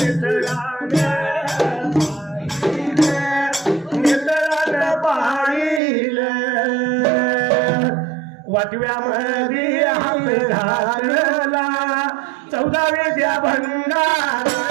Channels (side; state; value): left; drops out; at 5.8 s